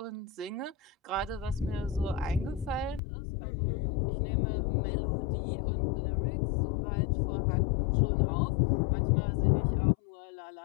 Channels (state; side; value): drops out; right; at 3.0 s